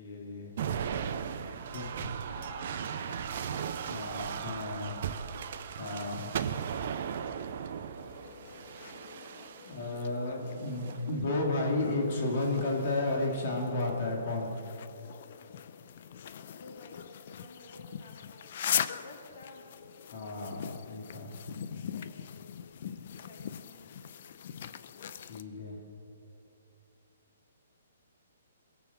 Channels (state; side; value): inverted; both; correlation -0.53